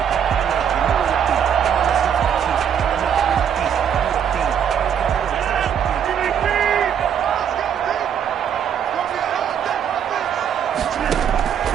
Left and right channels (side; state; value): left; quieter; 8.4 dB